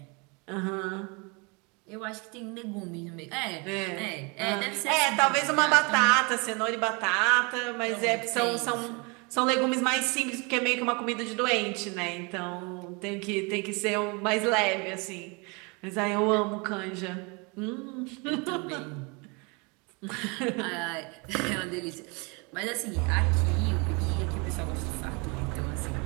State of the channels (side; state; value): left; quieter; 30.4 dB